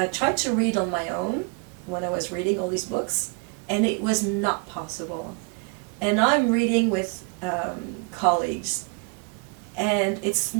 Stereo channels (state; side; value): quieter; left; 32.8 dB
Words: tried to read on my own when I was reading all these books, and it was not possible. And I'm reading with colleagues, and it's